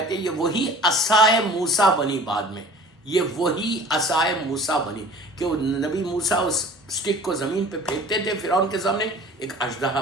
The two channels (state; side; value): normal; both; correlation 0.46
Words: تھے یہ وہی عصائے موسیٰ بنی بعد میں. یہ وہی عصائے موسیٰ بنی کہ وہ نبی موسیٰ اس سٹک کو زمین پہ پھینکتے تھے فرعون کے سامنے ایک اژدہا